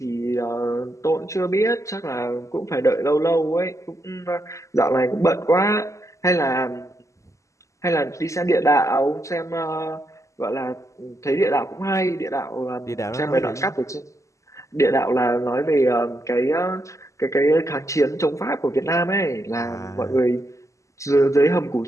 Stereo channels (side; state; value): right; late; 0.15 ms